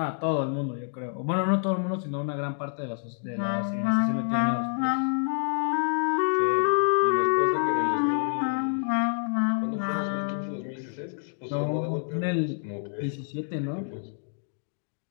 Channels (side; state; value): right; silent; digital silence